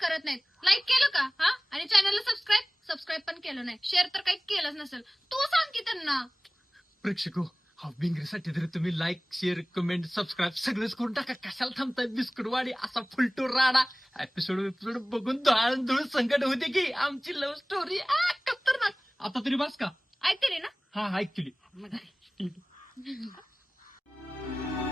नाहीत. लाईक केलं का हा? आणि चॅनलला सबस्क्राईब पण केलं नाही, शेअर तर काही केलंच नसेल. तू सांग की त्यांना. प्रेक्षक हा बिंगरीसाठी तरी तुम्ही लाईक शेअर कमेंट सबस्क्राईब सगळंच करून टाका. कशाला थांबताय? बिस्कुटवाडी असा फुलटो राडा एपिसोड बघून धूळ संकट होते की आमची लव्ह स्टोरी खतरनाक. आता तरी बस का? ऐकते ना? हा ऍक्च्युली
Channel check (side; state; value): both; normal; correlation 0.98